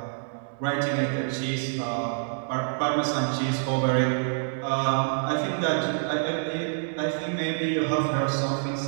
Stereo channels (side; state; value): left; silent; digital silence